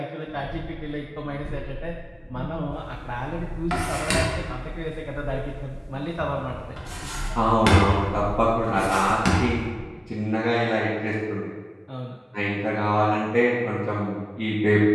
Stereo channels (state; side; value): identical; both; correlation 1.00